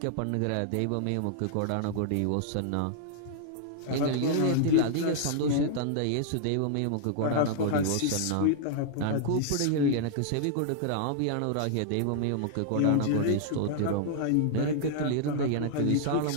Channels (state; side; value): different; both; correlation -0.01